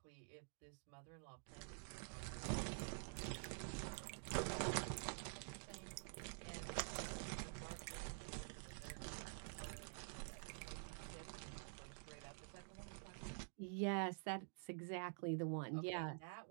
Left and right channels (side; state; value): left; silent; digital silence